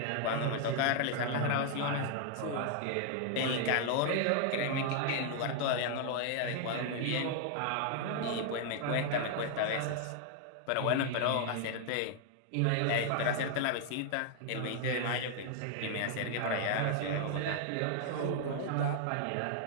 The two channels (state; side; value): different; both; correlation 0.00